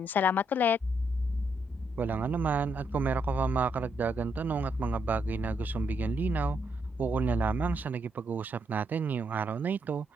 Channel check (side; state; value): both; normal; correlation 0.77